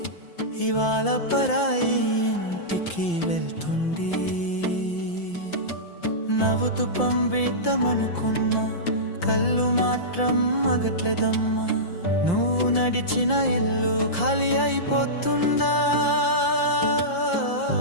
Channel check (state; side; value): late; right; 5.8 ms